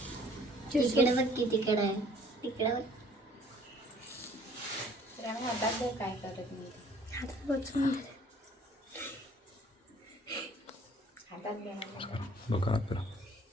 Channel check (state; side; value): normal; both; correlation 0.56